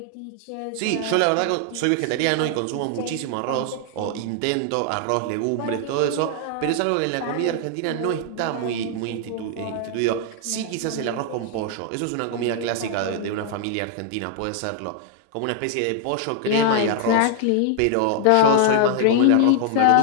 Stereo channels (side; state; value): both; different; correlation 0.00